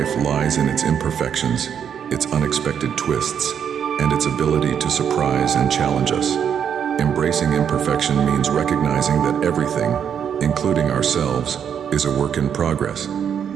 lies in its imperfections, its unexpected twists, and its ability to surprise and challenge us. Embracing imperfection means recognizing that everything, including ourselves, is a work in progress.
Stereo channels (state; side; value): quieter; left; 8.2 dB